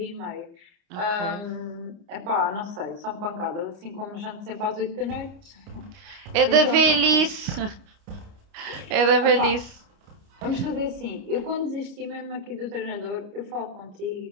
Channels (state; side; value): late; left; 29 ms